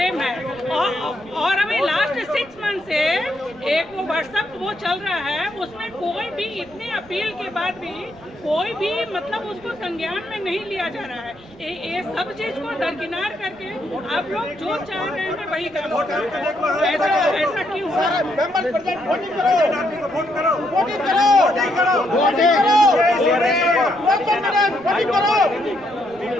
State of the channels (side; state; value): right; noise; rumble, 26 dB below the sound